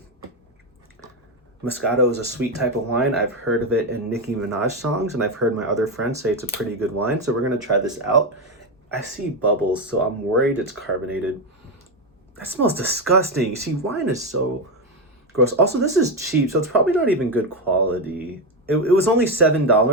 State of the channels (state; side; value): normal; both; correlation 0.10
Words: Moscato is a sweet type of wine. I've heard of it in Nicki Minaj songs, and I've heard my other friends say it's a pretty good wine. So we're gonna try this out. I see bubbles, so I'm worried it's carbonated. That smells disgusting. See, wine is so gross. Also, this is cheap, so it's probably not even good quality. It was only